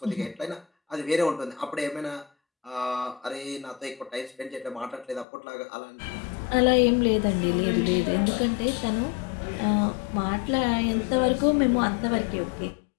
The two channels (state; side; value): drops out; right; at 5.2 s